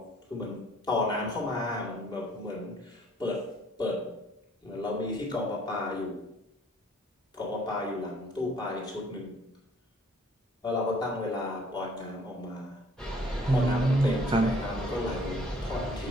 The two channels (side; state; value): both; normal; correlation 0.58